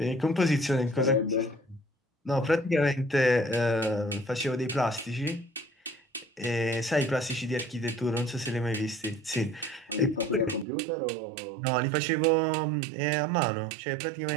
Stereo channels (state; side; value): drops out; left; at 10.7 s